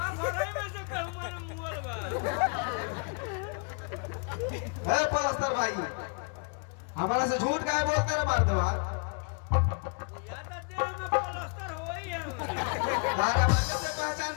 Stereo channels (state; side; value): quieter; right; 36.8 dB